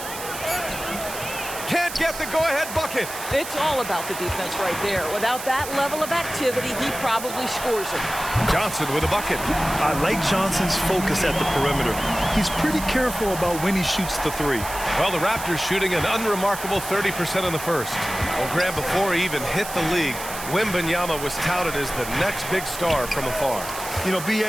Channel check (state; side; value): noise; right; hiss, 10 dB below the sound